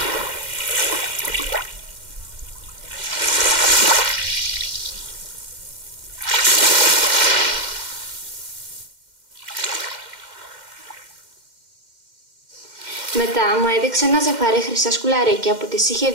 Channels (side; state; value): left; late; 2.1 ms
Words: Μετά μου έδειξε ένα ζευγάρι χρυσά σκουλαρίκια που της είχε